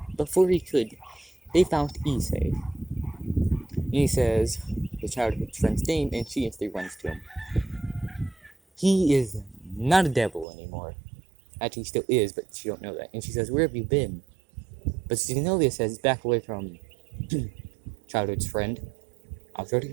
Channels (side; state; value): left; drops out; at 10.5 s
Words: Before he could, they found Issei. He says the childhood friend's name, and she instantly runs to him. He is not a devil anymore. Actually, he still is, but she don't know that. And she says, "Where have you been?" But Zenobia says, "Back away from childhood's friend. I'll tell